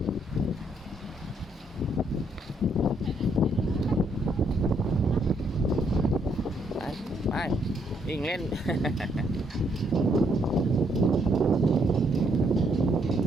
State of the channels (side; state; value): both; normal; correlation 0.72